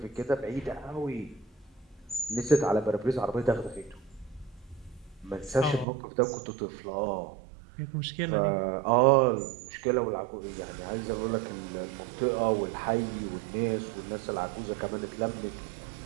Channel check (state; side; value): drops out; left; at 5.9 s